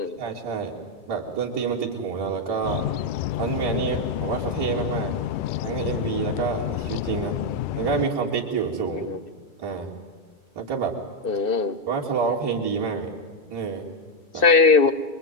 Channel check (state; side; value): late; right; 2.3 ms